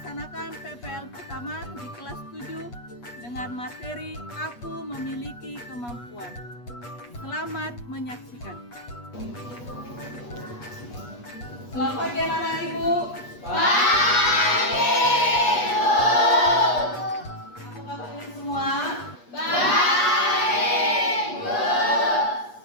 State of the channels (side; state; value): right; late; 8.3 ms